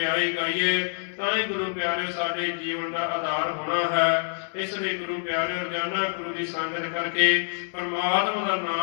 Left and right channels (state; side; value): silent; right; digital silence